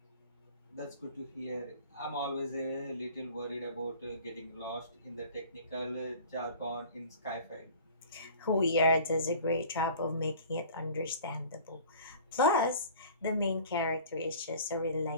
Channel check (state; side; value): inverted; both; correlation -0.45